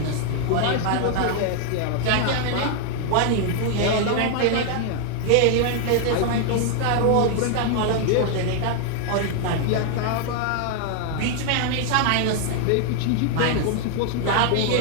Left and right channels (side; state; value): both; different; correlation 0.00